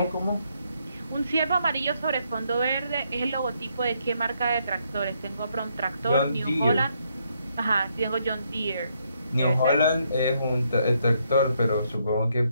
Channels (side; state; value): both; inverted; correlation -0.75